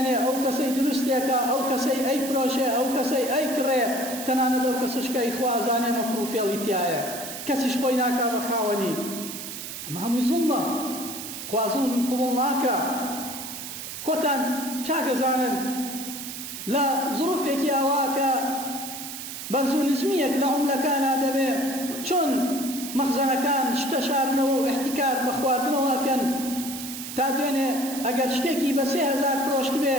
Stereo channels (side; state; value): right; noise; hiss, 9 dB below the sound